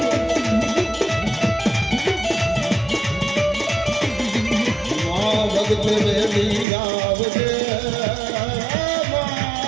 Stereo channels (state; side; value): drops out; left; at 6.7 s